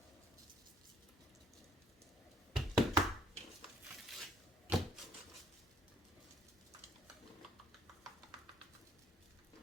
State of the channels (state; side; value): normal; both; correlation 0.63